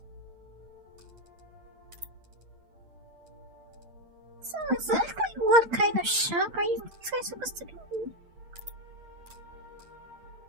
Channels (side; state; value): left; late; 8.7 ms